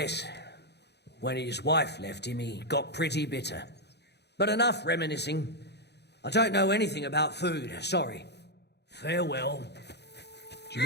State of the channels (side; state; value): right; late; 0.49 ms